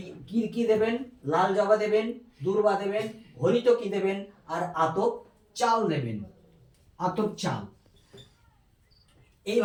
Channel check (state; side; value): identical; both; correlation 1.00